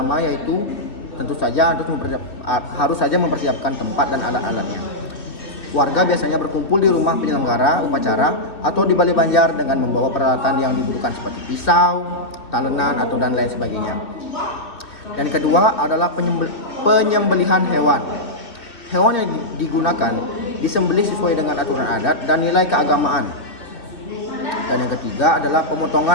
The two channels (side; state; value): right; late; 2.7 ms